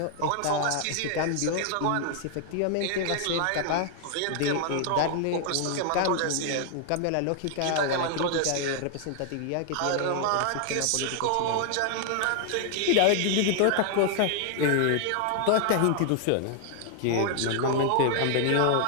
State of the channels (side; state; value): both; different; correlation 0.00